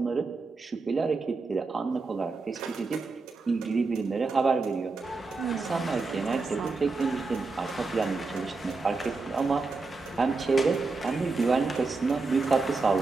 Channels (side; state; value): left; quieter; 4.0 dB